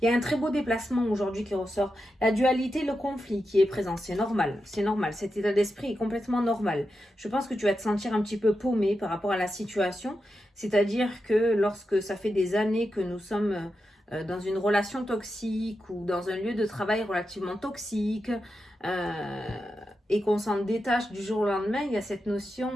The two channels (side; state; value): both; normal; correlation 0.88